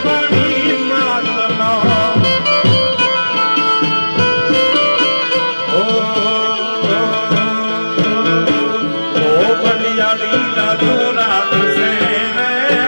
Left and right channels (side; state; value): both; inverted; correlation -1.00